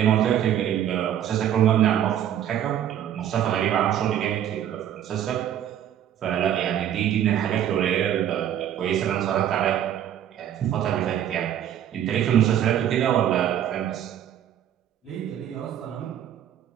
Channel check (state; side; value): quieter; left; 10.5 dB